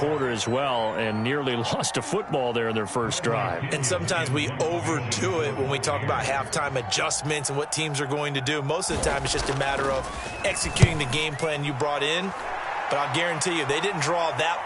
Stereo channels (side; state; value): both; identical; correlation 1.00